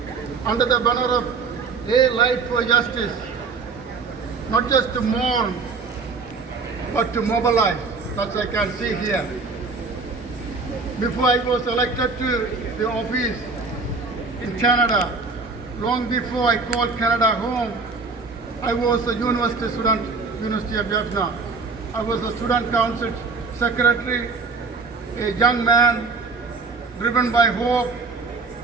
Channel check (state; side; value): quieter; left; 4.4 dB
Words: under the banner of A Light for Justice, not just to mourn, but to mobilize, as I can see here. Before I was elected to the office in Canada, long before I called Canada home, I was a university student, University of Vietnam. I was a student council secretary, a young man driven by hope,